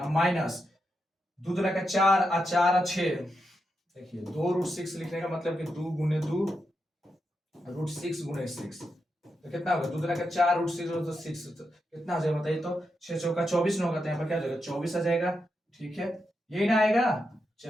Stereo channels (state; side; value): normal; both; correlation 0.86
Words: माइनस 2 दूना का 4 और 4 और 6। देखिए 2√6 लिखने का मतलब कि 2 गुने 2 √6 गुने 6, तो कितना होगा, 2 दूना का 4 √6 तो 6, तो कितना हो जाएगा बताइए, तो 6 चौका 24 न होगा, तो यहाँ पर क्या हो जाएगा 24 आ जाएगा, ठीक है, यही ना आएगा।